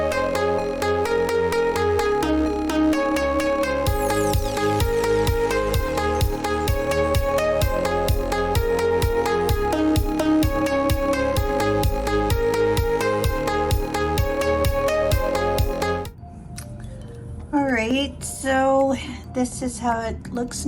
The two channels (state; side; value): identical; both; correlation 1.00